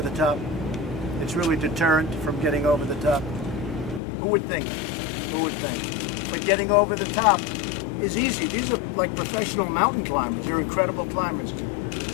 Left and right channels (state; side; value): drops out; right; at 4.0 s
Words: the top. It's really deterrent from getting over the top. Who would think? Who would think? But getting over the top is easy. These are like professional mountain climbers. They're incredible climbers.